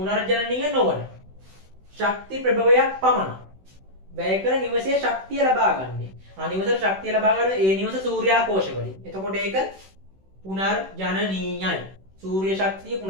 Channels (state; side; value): late; left; 16 ms